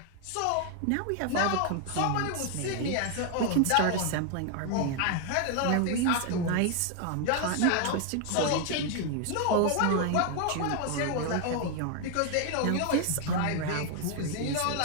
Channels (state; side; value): different; both; correlation 0.00